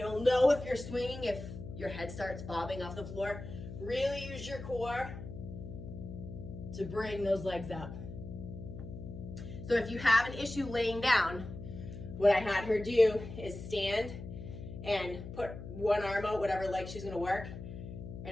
know if you're swinging if your head starts bobbing off the floor. Really use your core to bring those legs up. So if you have an issue laying down, what I had her do is stand and put one arm out, whatever leg she's gonna work,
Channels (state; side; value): noise; left; hum, 10 dB below the sound